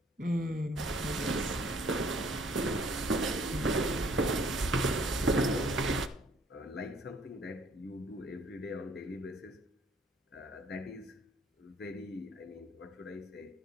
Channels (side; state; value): both; normal; correlation 0.60